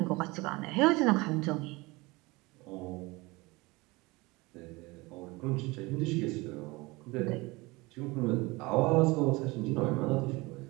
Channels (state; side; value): quieter; left; 23.3 dB